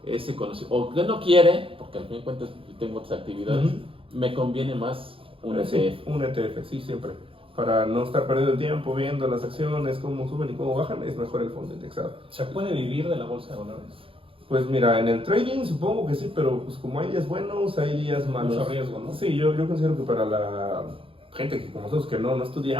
ese conocimiento, o que no quiere, porque al fin de cuentas tengo otras actividades, Ujú. me conviene más un Sí, ETF. un ETF, sí, siempre. Para no estar perdiendo el tiempo viendo las acciones, cómo suben y cómo bajan, es mejor el fondo indexado. ¿Se puede vivir de la bolsa de valores? Pues mira, en el trading supongo que sí, pero pues como hay días buenos, hay días malos. Mucho riesgo, ¿no? Sí, yo considero que para la gente que como nosotros que no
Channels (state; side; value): late; left; 0.26 ms